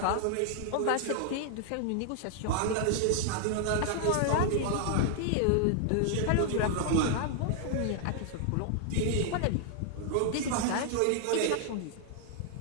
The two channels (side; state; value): both; different; correlation 0.00